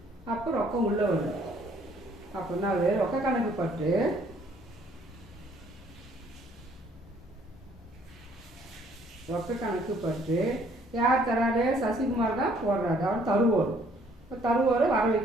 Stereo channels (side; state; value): both; normal; correlation 0.62